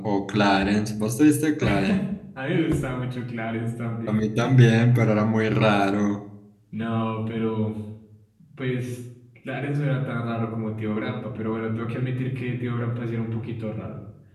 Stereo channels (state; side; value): identical; both; correlation 1.00